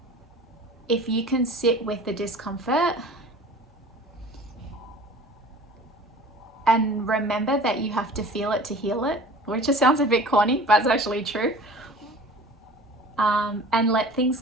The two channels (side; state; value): both; normal; correlation 0.43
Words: if you can sit with the discomfort and remember that you have to feel it to heal it, which just sounds a bit corny, but it's actually true. And let